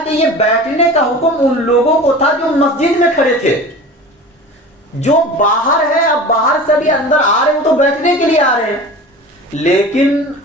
یہ بیٹھنے کا حکم ان لوگوں کو تھا جو مسجد میں کھڑے تھے. جو باہر ہے، اب باہر سے بھی اندر آ رہے ہیں تو بیٹھنے کے لیے آ رہے ہیں، لیکن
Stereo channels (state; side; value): normal; both; correlation 0.36